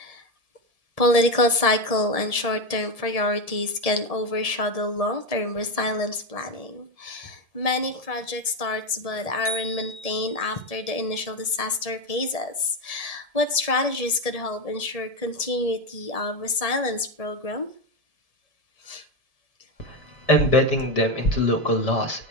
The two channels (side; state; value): left; late; 1.7 ms